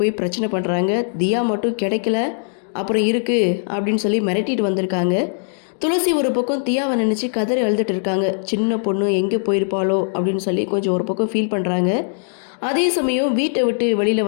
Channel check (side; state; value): right; silent; digital silence